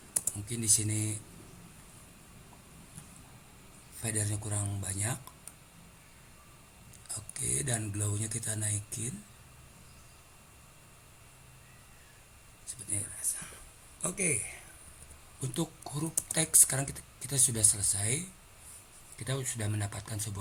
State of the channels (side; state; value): both; identical; correlation 1.00